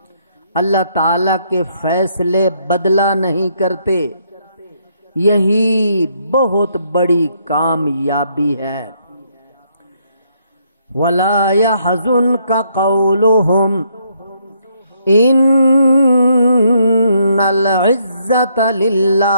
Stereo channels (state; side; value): inverted; both; correlation -0.72